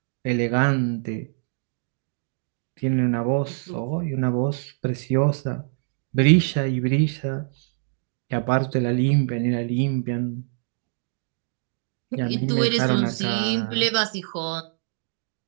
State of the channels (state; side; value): silent; left; digital silence